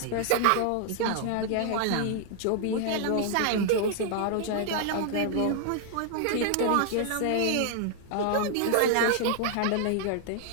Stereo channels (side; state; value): both; different; correlation 0.00